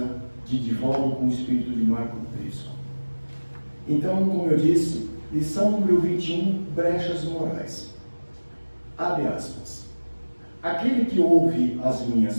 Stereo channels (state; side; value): inverted; both; correlation -1.00